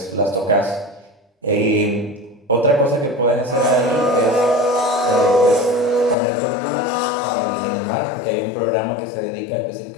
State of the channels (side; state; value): right; drops out; at 6.2 s